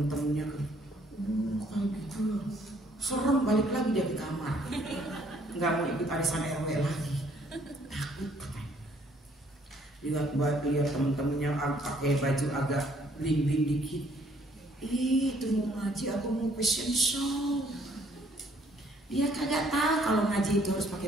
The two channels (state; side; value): normal; both; correlation 0.63